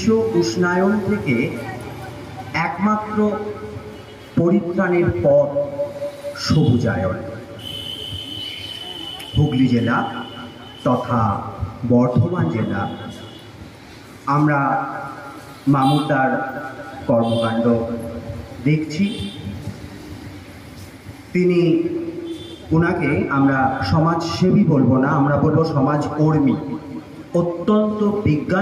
উষ্ণায়ন থেকে একমাত্র পরিত্রাণের পথ সবুজায়ন। হুগলি জেলা তথা বর্ধমান জেলা আমরা মামুতার কর্মকাণ্ড দেখছি। ওনাকে আমরা সমাজসেবী বলবো না, আমরা বলবো সমাজকর্মী। অত্যন্ত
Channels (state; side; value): identical; both; correlation 1.00